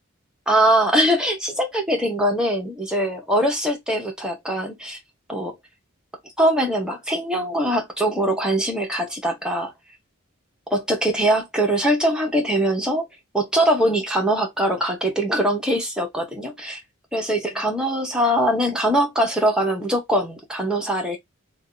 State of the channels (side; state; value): both; normal; correlation 0.49